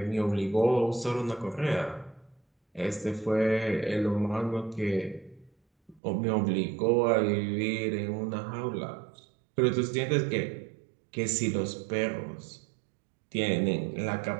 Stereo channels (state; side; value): drops out; left; at 6.0 s